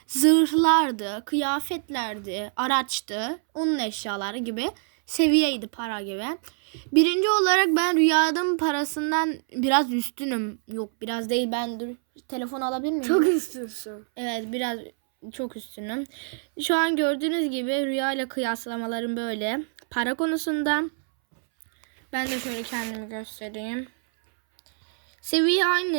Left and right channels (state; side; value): silent; left; 61 dB below the other